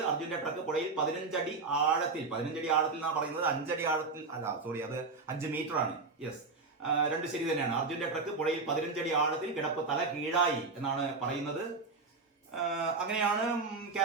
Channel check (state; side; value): quieter; left; 4.1 dB